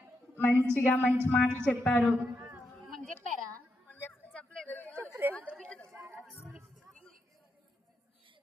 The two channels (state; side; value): normal; both; correlation 0.83